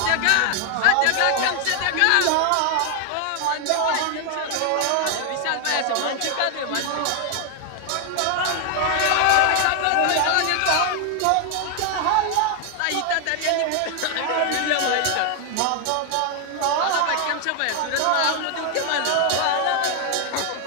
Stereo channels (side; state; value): both; different; correlation 0.00